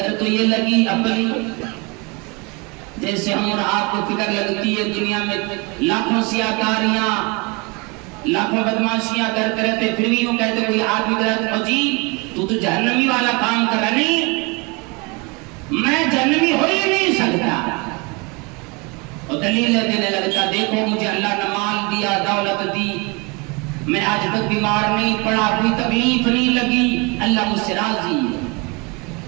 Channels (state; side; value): quieter; left; 28.4 dB